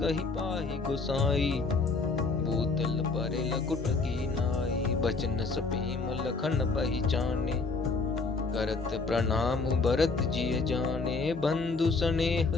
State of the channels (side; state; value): right; quieter; 4.0 dB